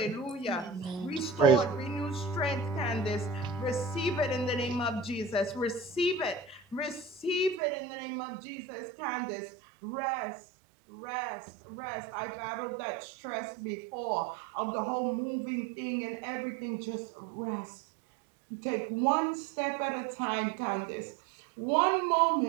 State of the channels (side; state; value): left; drops out; at 7.6 s